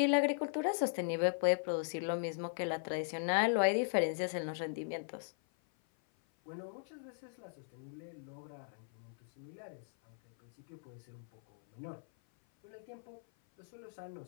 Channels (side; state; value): right; silent; 52 dB below the other